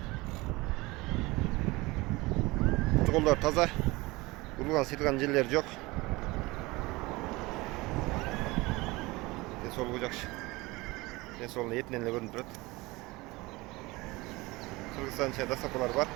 Kollar taza. Vurulgan silgan ciller yok. Sol olacak. Soluna yetmenle görünüp durur. Kırgızistan içinde sapalar var.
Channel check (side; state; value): left; quieter; 22.2 dB